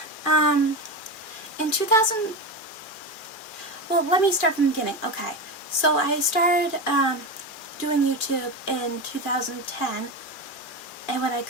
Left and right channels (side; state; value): right; late; 2.4 ms